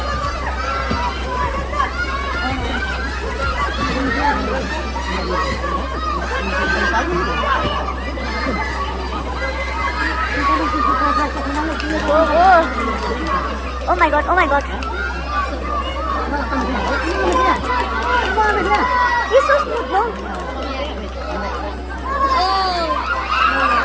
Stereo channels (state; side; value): identical; both; correlation 1.00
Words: Oh my God, oh my God. He's so smooth, no?